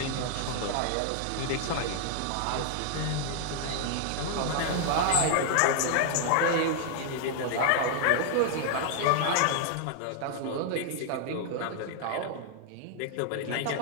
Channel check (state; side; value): different; both; correlation 0.00